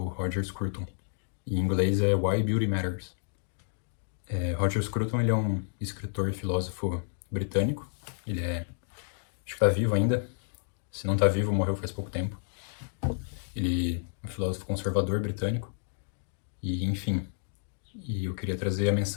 Roger Scruton. Em inglês é Why Beauty Matters. Roger Scruton, ele é um escritor e filósofo britânico. Ele acho que tá vivo ainda. Se não tá vivo, morreu faz pouco tempo. Ele é um filósofo conservador britânico. E, enfim, eu queria trazer a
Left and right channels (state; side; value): silent; right; digital silence